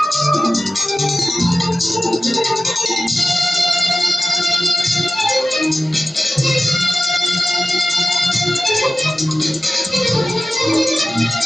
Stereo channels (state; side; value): normal; both; correlation 0.94